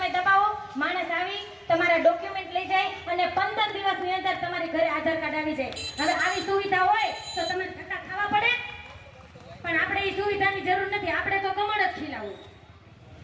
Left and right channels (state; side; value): identical; both; correlation 1.00